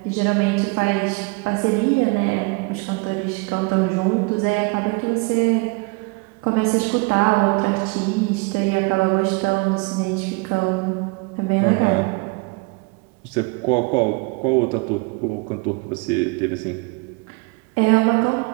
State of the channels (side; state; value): left; quieter; 28.0 dB